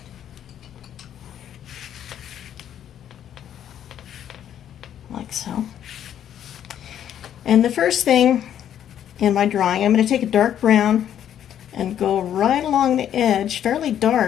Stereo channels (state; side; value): quieter; right; 10.2 dB